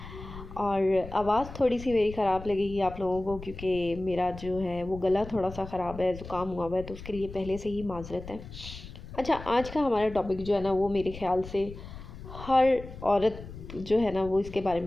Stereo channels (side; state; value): left; noise; rumble, 13 dB below the sound